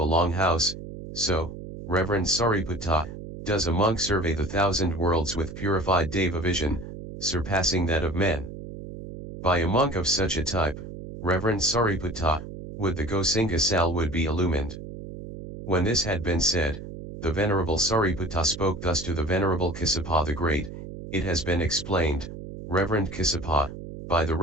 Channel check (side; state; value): right; noise; hum, 11 dB below the sound